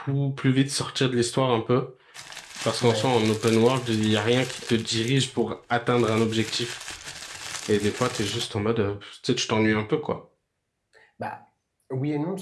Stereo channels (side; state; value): both; identical; correlation 1.00